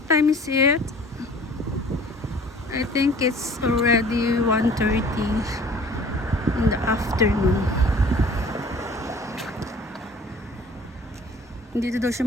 time is it? I think it's already 1:30 in the afternoon. Hindi daw siya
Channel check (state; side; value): normal; both; correlation 0.49